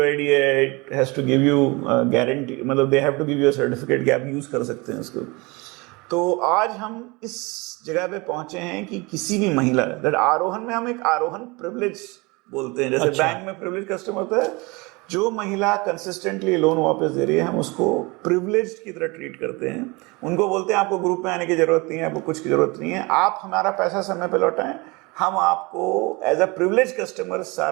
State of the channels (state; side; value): quieter; left; 25.9 dB